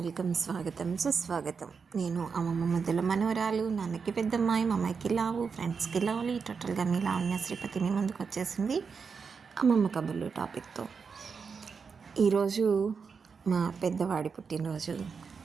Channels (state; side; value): quieter; left; 5.6 dB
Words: స్వాగతం సుస్వాగతం. నేను అమ్మమ్మ ముద్దుల మనవరాలు, నాన్నకి పెద్దమ్మాయి, మా అమ్మాయికి లావు, ఫ్రెండ్స్కి లవ్లీ, టోటల్గా మీ లావణ్య శ్రీపతి మీ ముందుకు వచ్చేసింది అమ్మమ్మ కబుర్లు టాపిక్తో. ఈరోజు మా పెద్దవాడి పుట్టినరోజు.